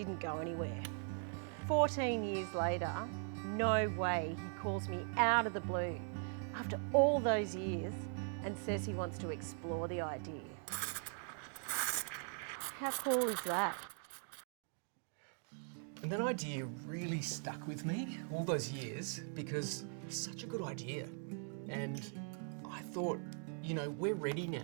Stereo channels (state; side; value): silent; left; 51 dB below the other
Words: go anywhere. 14 years later, no way, he calls me out of the blue after all those years and says he wants to explore the idea. How cool is that? And that idea really stuck with me all those years because it's such a good idea. And I thought, we're ready